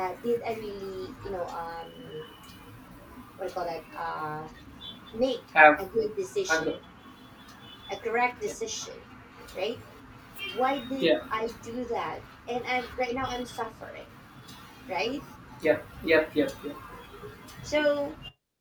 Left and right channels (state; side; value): identical; both; correlation 1.00